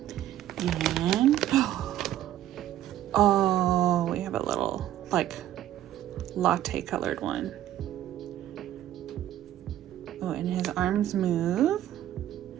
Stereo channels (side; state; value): left; quieter; 12.5 dB